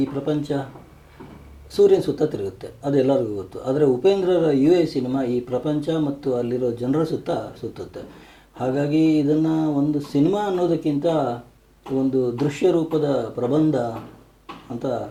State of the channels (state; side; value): identical; both; correlation 1.00